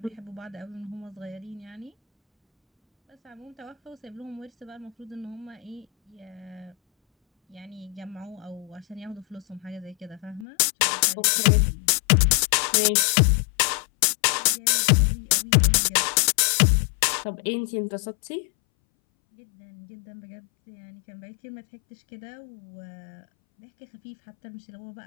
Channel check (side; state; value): right; drops out; at 10.5 s